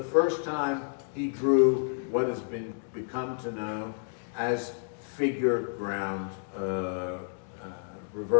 first time he drew what has become to know as figure ground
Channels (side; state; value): right; silent; 58 dB below the other